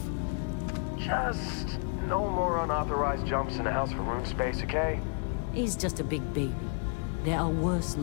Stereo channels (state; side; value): quieter; right; 39.2 dB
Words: Just no more unauthorized jumps in the house for room space, okay? He's just a big baby. There are worse